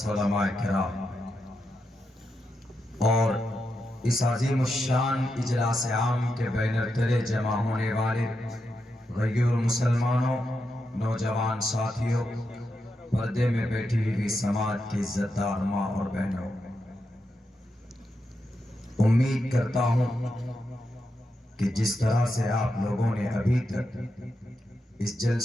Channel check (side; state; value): both; normal; correlation 0.85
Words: علماء کرام اور اس عظیم الشان اجلاس عام کے بینر تلے جمع ہونے والے غیور مسلمانوں، نوجوان ساتھیوں، پردے میں بیٹھی ہوئی سماج کی عزت دار ماں اور بہنوں، امید کرتا ہوں کہ جس طرح سے آپ لوگوں نے ابھی تک اس